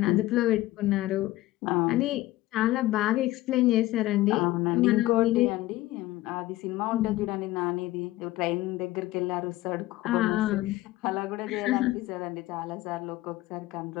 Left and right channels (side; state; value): right; quieter; 17.3 dB